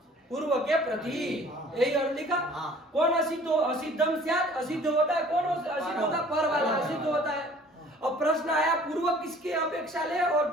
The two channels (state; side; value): normal; both; correlation 0.52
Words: पूर्व के प्रति, यही अर्थ लिखा। कौन असिद्ध हो? असिद्धम स्यात्, असिद्ध होता है कौन? असिद्ध होता है पर वाला असिद्ध होता है। अब प्रश्न आया पूर्व किसकी अपेक्षा ले और